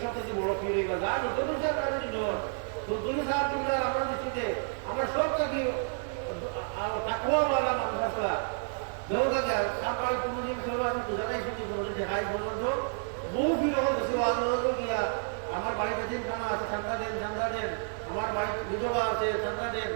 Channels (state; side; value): silent; left; digital silence